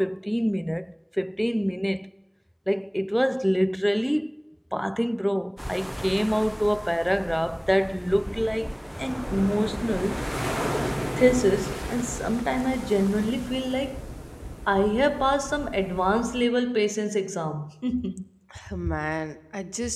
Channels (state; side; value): identical; both; correlation 1.00